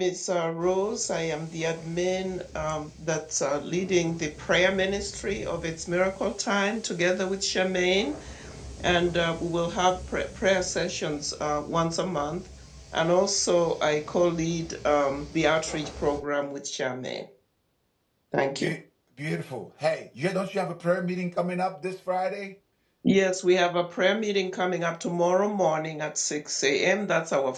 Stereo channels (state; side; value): identical; both; correlation 1.00